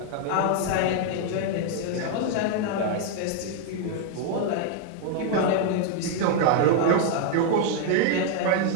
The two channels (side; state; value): both; different; correlation 0.00